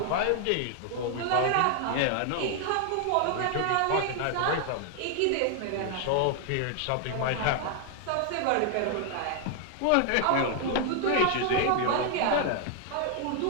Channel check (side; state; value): both; different; correlation 0.00